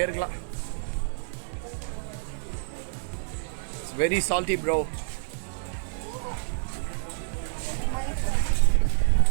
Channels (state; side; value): silent; left; digital silence